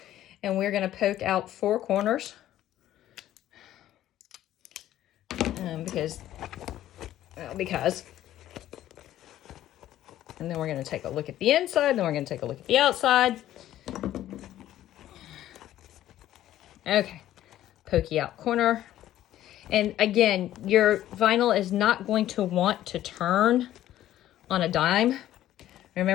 And we're going to poke out 4 corners. Because. And then we're going to take a look at the inside. Then we're going to take a look at the outside. Okay. Pokey out corner. And again, your vinyl is not going to want to turn on a dime.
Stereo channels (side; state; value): right; quieter; 13.0 dB